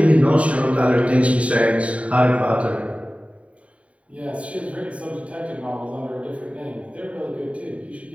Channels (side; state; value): left; late; 0.064 ms